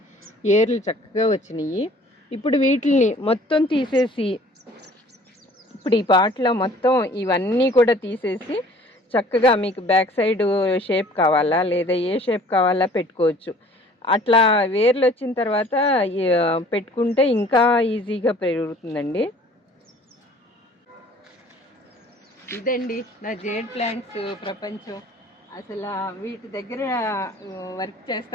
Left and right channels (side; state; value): both; normal; correlation 0.52